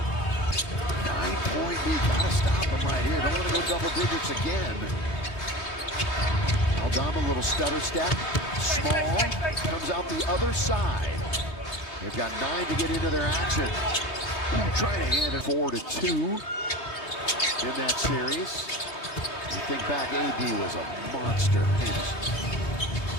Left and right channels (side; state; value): right; late; 3.3 ms